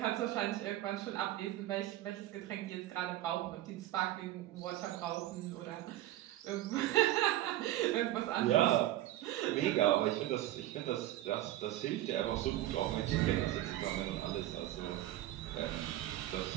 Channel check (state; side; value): quieter; left; 14.7 dB